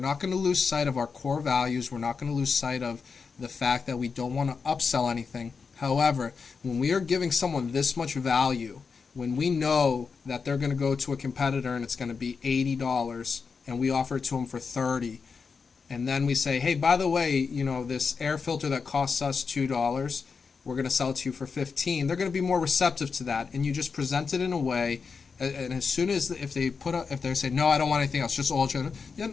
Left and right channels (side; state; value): right; quieter; 5.3 dB